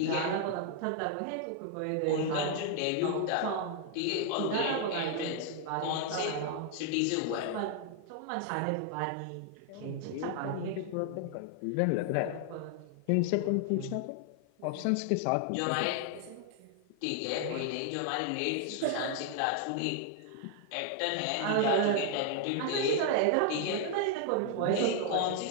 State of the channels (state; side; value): different; both; correlation 0.00